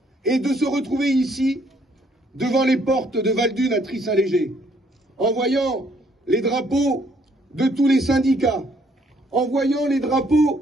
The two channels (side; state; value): both; normal; correlation 0.67